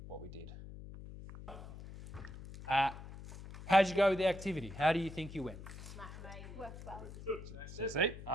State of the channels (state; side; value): noise; left; hum, 12 dB below the sound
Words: did. How'd you go with the activity? How do you think you went? Worked well. So see,